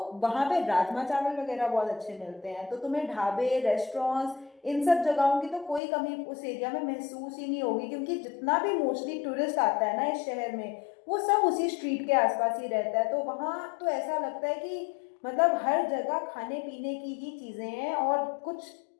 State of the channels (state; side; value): drops out; right; at 5.8 s